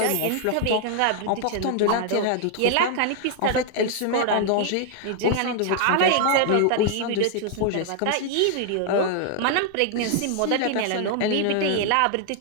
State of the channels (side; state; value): both; different; correlation 0.00